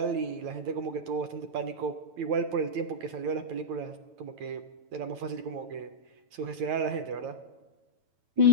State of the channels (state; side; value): late; left; 9.0 ms